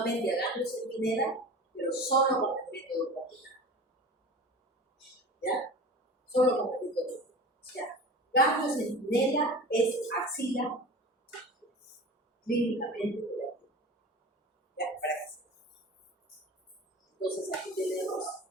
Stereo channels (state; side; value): normal; both; correlation 0.36